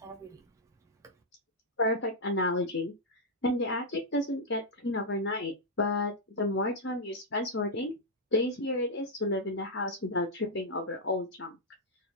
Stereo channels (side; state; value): both; normal; correlation -0.04